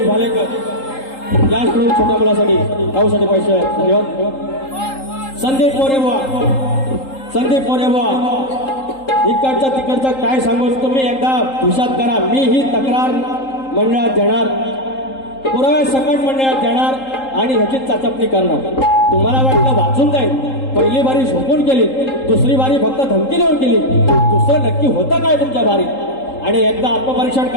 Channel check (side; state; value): right; late; 3.8 ms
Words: भालेकर याचकडून छोट्या मुलासाठी गावासाठी पैसे धन्यवाद. संदीप मोरेबुवा इकडचा तिकडचा काय सांगू तुम्ही एकदा हुशात करा. मी ही तक्रार मंडळात देणार, पुराव्या सकट मंडळात देणार आणि ह्याची चाचपणी करणार. तुम्हाला वाटलं वाचून जाईल, पहिली बारी झोपून केली, दुसरी बारी फक्त धमकी देऊन केली, दुसरं नक्की होतं काय तुमच्या बारी? आणि एकदा आत्मपरीक्षण